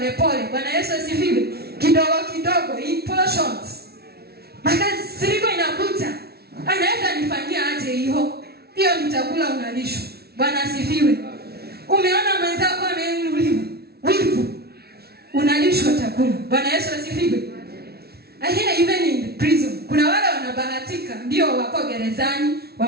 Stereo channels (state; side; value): late; left; 0.45 ms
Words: Bwana Yesu asifiwe. Kidogo kidogo, in portions. Makasiriko inakuja, anaweza nifanyia aje hiyo? Hiyo ni chakula unalishwa. Bwana asifiwe. Umeona mwenzako ameinuliwa, wivu, unalishwa chakula. Bwana Yesu asifiwe. Ahia, even in prison kuna wale wanabahatika, ndio wako gerezani